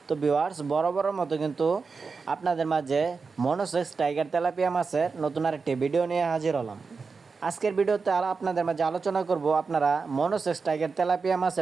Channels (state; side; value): quieter; left; 4.8 dB